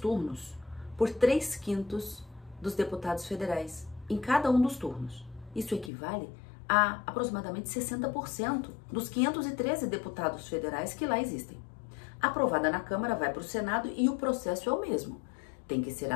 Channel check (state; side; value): drops out; right; at 5.9 s